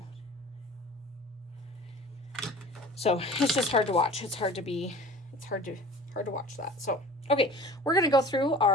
So it's just hard to watch. It's hard to watch that. So, okay, we're going to go through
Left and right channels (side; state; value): both; normal; correlation 0.42